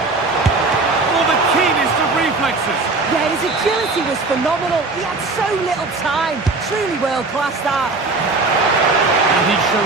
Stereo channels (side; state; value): left; quieter; 3.6 dB